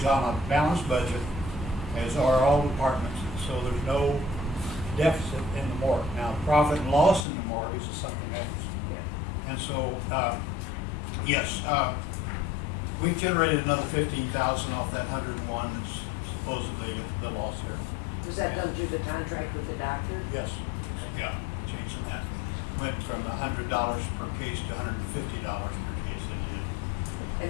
on a balanced budget, as are all departments, so there's no deficit in the morgue. Now, profit and loss in the morgue is something else. And so, yes, we've generated another 15,000 off that 101 that's supposedly the loss here. Was that done through the contract with the doctor? Yes, yeah, changing that. Went from $100 per case to $150 per case that it did.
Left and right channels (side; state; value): right; drops out; at 7.2 s